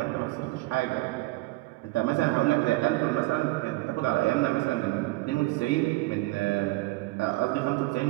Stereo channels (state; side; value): quieter; left; 21.4 dB